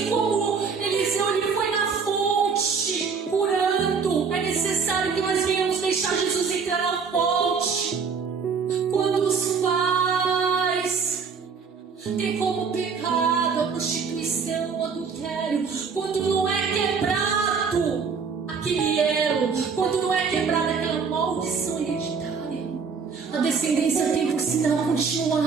como Eliseu, ele foi na fonte curando, é necessário que nós venhamos deixar Jesus entrar na fonte. Quando os pais têm como pecado a prostituição, o adultério, quando não é quebrado aquele elo, quando não é quebrada aquela maldição hereditária, a descendência tem por sinal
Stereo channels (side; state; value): left; quieter; 5.6 dB